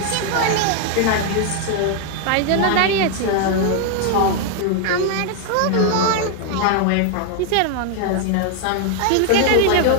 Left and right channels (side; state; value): both; different; correlation 0.00